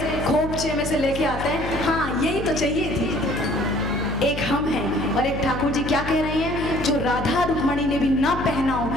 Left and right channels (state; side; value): noise; left; hum, 7 dB below the sound